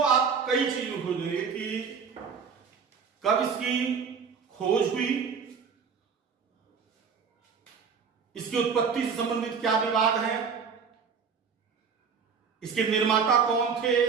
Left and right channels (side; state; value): left; quieter; 6.1 dB